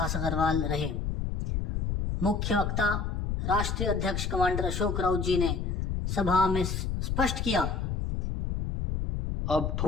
अग्रवाल रहे। मुख्य वक्ता राष्ट्रीय अध्यक्ष कमांडर अशोक राउत जी ने सभा में स्पष्ट किया, अब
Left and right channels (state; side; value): noise; left; rumble, 1 dB below the sound